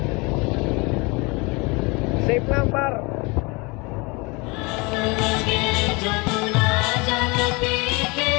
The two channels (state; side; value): quieter; right; 27.4 dB